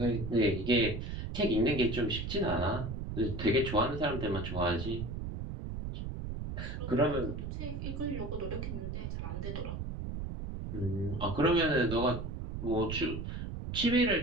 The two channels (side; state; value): right; noise; rumble, 5 dB below the sound